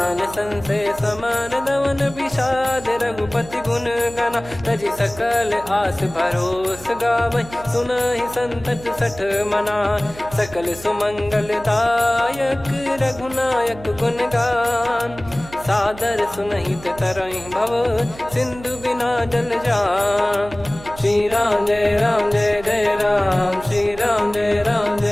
संशय समान दवन, विषाद रघुपति गुण गना। तजि सकल आस भरोस गावै, सुनहि संतत सठ मना। सकल सुमंगल दायक, रघुनायक गुण गान। सादर सुनहित तरहि भव, सिंधु बिना जल जान। श्री राम जय राम जय जय राम, श्री राम जय राम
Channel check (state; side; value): noise; right; hum, 17 dB below the sound